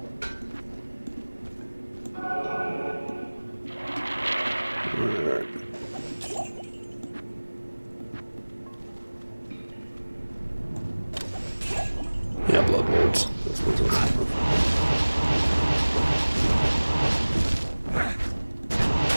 Alright. Yeah, blood lords. That's what it's about.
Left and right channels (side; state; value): both; inverted; correlation -1.00